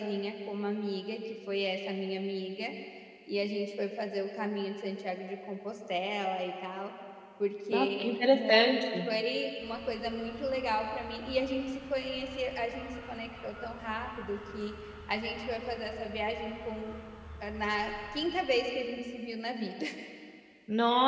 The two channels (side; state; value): both; identical; correlation 1.00